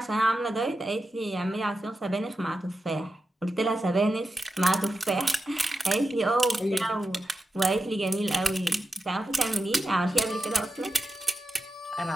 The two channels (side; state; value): both; normal; correlation 0.90